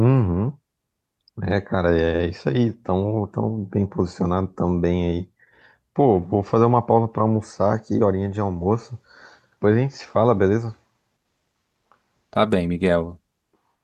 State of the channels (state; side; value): identical; both; correlation 1.00